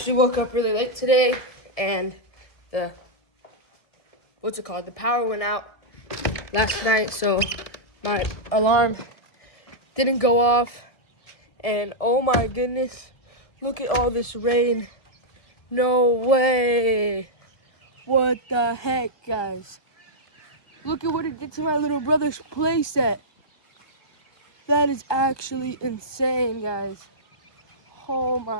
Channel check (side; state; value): right; late; 1.6 ms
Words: woke up really late today, and the power went out last night, so my alarm didn't go off. And oh my goodness, look at all this rain. No way. What the heck, guys? Look at what it did to my little brother's playset. That is actually insane, guys. Oh